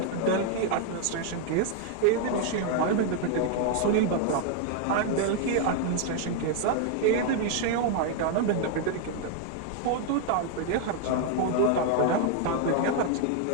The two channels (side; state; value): both; different; correlation 0.00